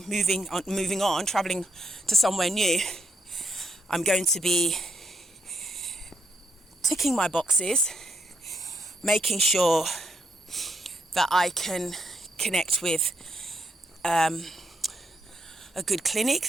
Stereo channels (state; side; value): normal; both; correlation 0.77